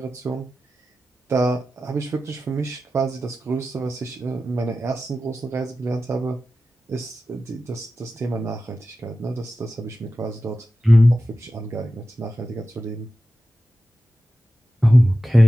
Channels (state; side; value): normal; both; correlation 0.93